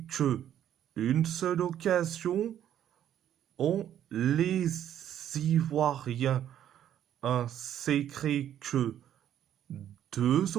que une seule occasion. Les Ivoiriens s'est créé que deux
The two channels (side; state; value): left; quieter; 10.7 dB